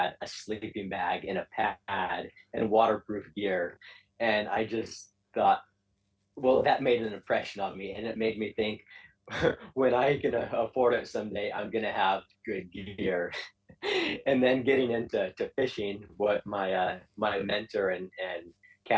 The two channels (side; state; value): both; identical; correlation 1.00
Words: a sleeping bag and a pad and waterproof gear. And I just thought, well, that made an impression on me, and it made me think, when I can afford it someday, I'm gonna have good gear. And then getting into fishing, what my mentor and